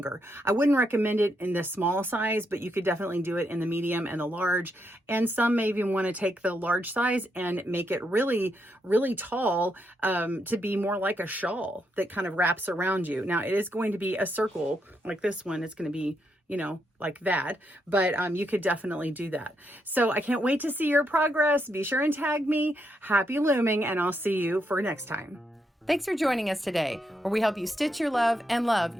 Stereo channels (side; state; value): both; normal; correlation 0.79